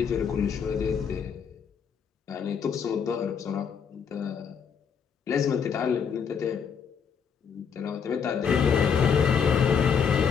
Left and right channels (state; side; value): quieter; right; 6.8 dB